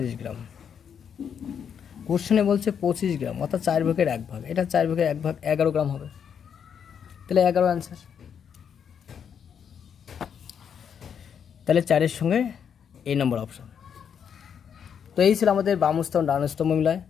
গ্রাম। কোশ্চেনে বলছে 25 গ্রাম অর্থাৎ 4/1 এটা 4/1 11 গ্রাম হবে, তাহলে 11 অ্যান্সার। তাহলে 4-এর সঙ্গে এই নম্বর অপশান। তো এই ছিল আমাদের বাম স্তম্ভ ডান স্তম্ভ মিলায়।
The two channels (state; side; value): quieter; right; 7.7 dB